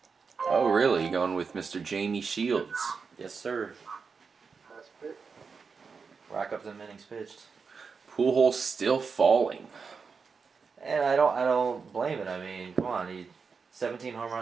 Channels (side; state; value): left; quieter; 5.3 dB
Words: Oh, really? You going with Mr. Jamie Shields? Yes, sir. Nice pick. Rack up the innings pitched. Pujols still falling. And I don't blame it. I mean, come on, he 17 home